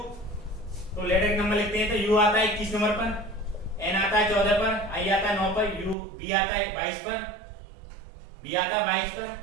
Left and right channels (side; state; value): left; drops out; at 6.0 s